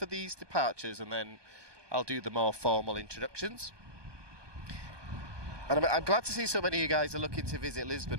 these departures and then I'll do the more formal introductions. And I'm glad to see so many of you guys are looking to visit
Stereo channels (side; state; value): left; late; 1.2 ms